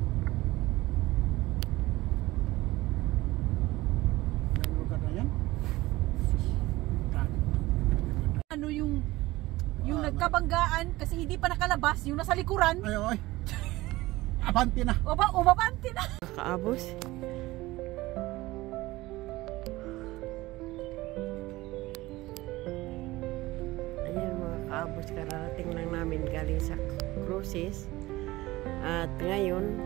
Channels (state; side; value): quieter; left; 18.9 dB